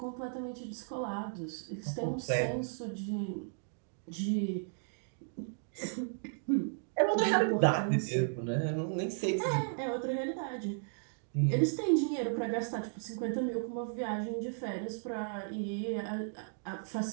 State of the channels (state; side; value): silent; left; digital silence